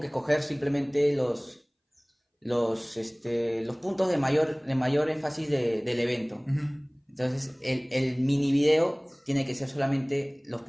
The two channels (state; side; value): identical; both; correlation 1.00